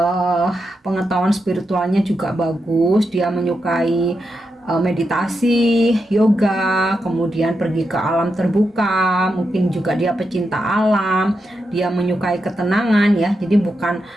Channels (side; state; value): both; normal; correlation 0.86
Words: pengetahuan spiritualnya juga bagus. Dia menyukai meditasi, yoga, kemudian pergi ke alam terbuka, mungkin juga dia pecinta alam, dia menyukai ketenangan ya, jadi bukan